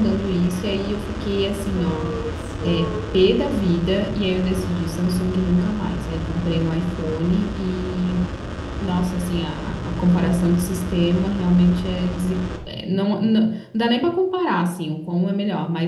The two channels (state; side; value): identical; both; correlation 1.00